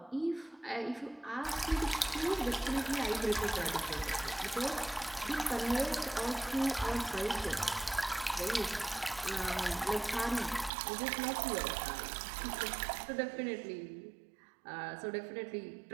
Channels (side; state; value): left; drops out; at 10.7 s